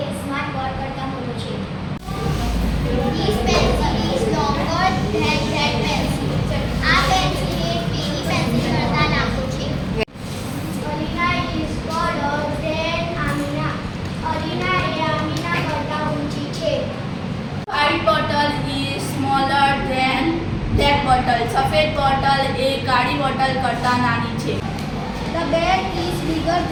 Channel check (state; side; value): identical; both; correlation 1.00